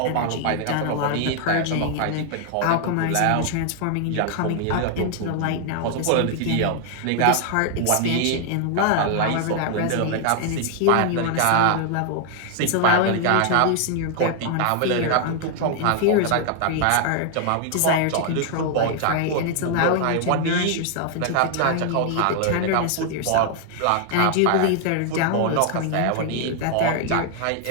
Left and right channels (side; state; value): both; different; correlation 0.00